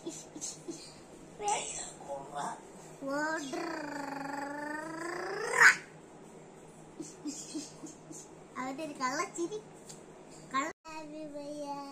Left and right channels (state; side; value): identical; both; correlation 1.00